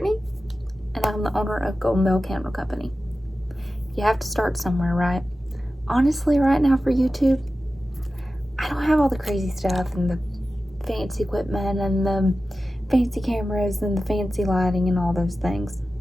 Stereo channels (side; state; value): both; normal; correlation 0.94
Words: and I'm the owner of Golden Bell Candle Company. You have to start somewhere, right? Honestly, right now for YouTube, I don't have all the crazy stuff and the fancy equipment and the fancy cameras and the fancy lighting and all those things.